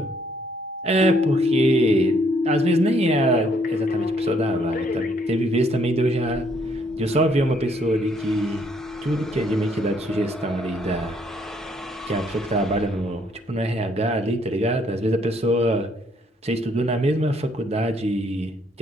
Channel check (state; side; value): normal; both; correlation 0.68